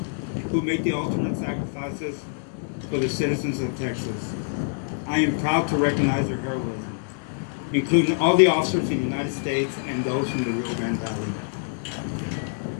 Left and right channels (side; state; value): right; silent; 61 dB below the other